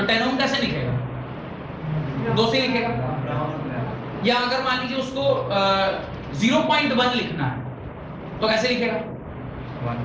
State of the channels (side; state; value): both; identical; correlation 1.00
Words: 10 ओम कैसे लिखेगा? 2 से लिखेगा। या अगर मान लीजिए उसको 0.1 लिखना है तो कैसे लिखेगा?